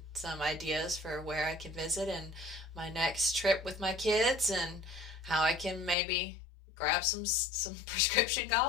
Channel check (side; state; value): right; drops out; at 6.0 s